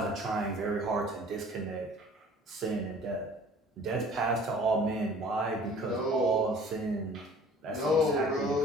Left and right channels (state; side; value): normal; both; correlation 0.49